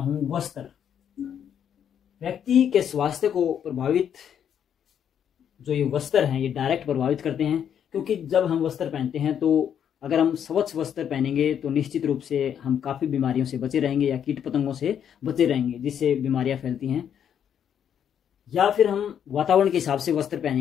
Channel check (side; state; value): right; quieter; 8.8 dB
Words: वस्त्र। व्यक्ति के स्वास्थ्य को प्रभावित जो ये वस्त्र हैं ये डायरेक्ट प्रभावित करते हैं, क्योंकि जब हम वस्त्र पहनते हैं तो अगर हम स्वच्छ वस्त्र पहनेंगे तो निश्चित रूप से हम काफ़ी बीमारियों से बचे रहेंगे या कीट पतंगों से बचे रहेंगे जिससे बीमारियां फैलती हैं। या फिर हम वातावरण के हिसाब से वस्त्र